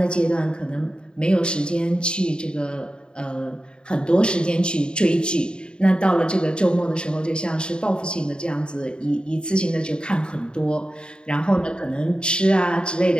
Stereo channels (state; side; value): late; right; 0.050 ms